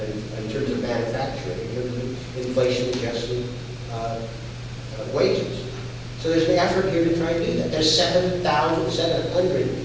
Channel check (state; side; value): identical; both; correlation 1.00